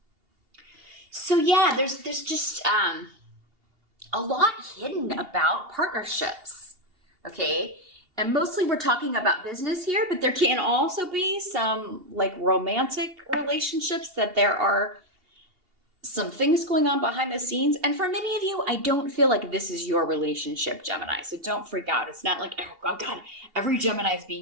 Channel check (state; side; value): late; left; 2.8 ms